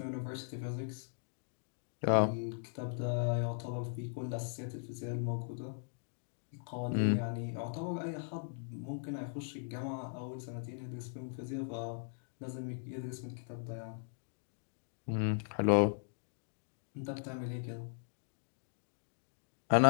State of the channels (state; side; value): silent; right; digital silence